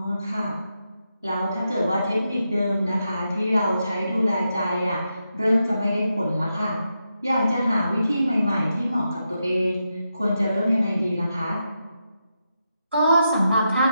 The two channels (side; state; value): both; inverted; correlation -0.86